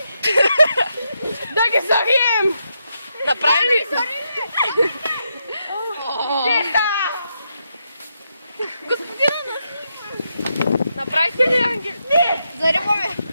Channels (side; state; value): both; inverted; correlation -0.82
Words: Да ги зарием! Направи ли? Направихте ли ангел? Не! Зариваме!